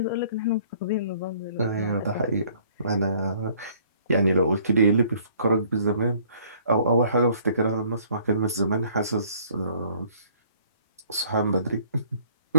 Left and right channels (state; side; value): inverted; both; correlation -0.59